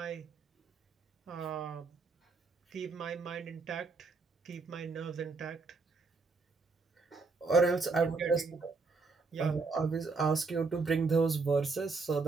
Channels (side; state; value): left; quieter; 4.2 dB